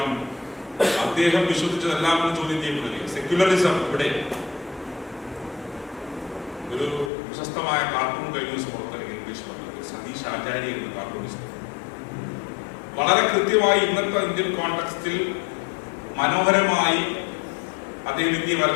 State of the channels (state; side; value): drops out; right; at 7.1 s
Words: അദ്ദേഹം വിശ്വസിച്ചതെല്ലാം ചോദ്യം ചെയ്യപ്പെടുകയും സെക്യുലറിസം ഇവിടെ ഒരു പ്രശസ്തമായ കാർട്ടൂൺ കഴിഞ്ഞ ദിവസം പുറത്തിറങ്ങിയ ഇംഗ്ലീഷ് സതീഷ് ആചാര്യ എന്ന കാർട്ടൂണിസ്റ്റ് വളരെ കൃത്യമായി ഇന്നത്തെ ഇന്ത്യൻ കോണ്ടെക്സ്റ്റിൽ മനോഹരമായി അദ്ദേഹം ഇന്ത്യയെ